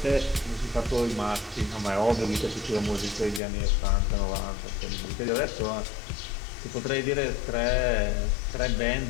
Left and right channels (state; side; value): drops out; right; at 3.4 s